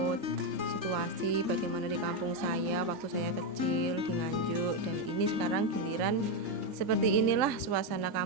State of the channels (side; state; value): left; late; 3.4 ms